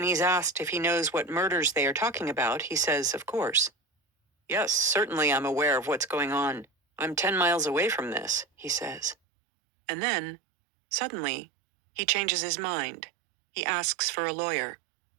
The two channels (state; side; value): drops out; left; at 9.2 s